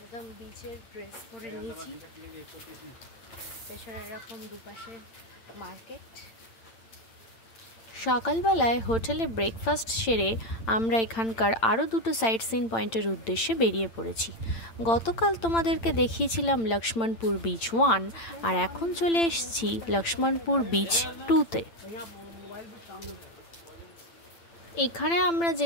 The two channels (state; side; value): late; right; 8.9 ms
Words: একদম বিচের ড্রেস পরে নিয়েছি। পেছনে এরকম দুপাশে মার্কেট। সকালবেলায় হোটেলে ব্রেকফাস্ট সেরে আমরা এখানকার আরও দুটো সাইট সিন পয়েন্টের উদ্দেশ্যে বেরিয়ে পড়েছি। গতকাল তোমাদেরকে দেখিয়েছিলাম লক্ষ্মণপুর বিচ 1 আর এখন চলে এসেছি লক্ষ্মণপুর বিচ 2তে। এখানে আমরা